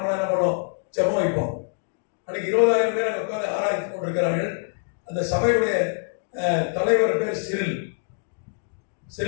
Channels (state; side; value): silent; right; digital silence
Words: என்ன பண்ணுவோம், ஜெபம் வைப்போம். அன்னைக்கு 20,000 பேர் அங்கே உட்காந்து ஆராய்ச்சி கொண்டிருக்கிறார்கள். அந்த சபையுடைய தலைவர் பேர்